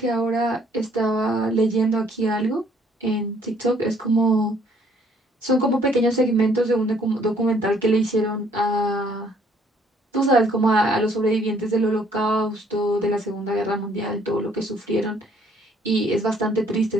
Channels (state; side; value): normal; both; correlation 0.63